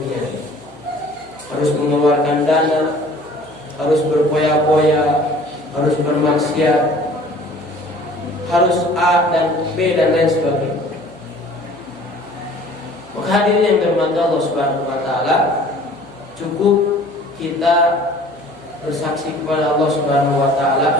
Harus mengeluarkan dana, harus berpoya-poya, harus bermaksiat, harus A dan B dan lain sebagainya. Maka hadirin yang dirahmati Allah Subhanahu wa taala, cukup kita bersaksi kepada Allah Subhanahu wa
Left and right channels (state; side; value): noise; right; hum, 25 dB below the sound